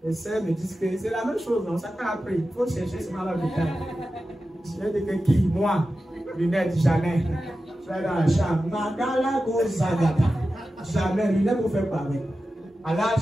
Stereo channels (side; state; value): both; normal; correlation 0.93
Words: Les sœurs me disent que c'est la même chose, non? Ça fait après. Il faut chercher ce mal à l'hôpital. Je vais dire que qui? Moi, lunettes, jamais. Je vais dans la chambre. Magala Gozagata. Jamais, lunettes vous fait pareil. À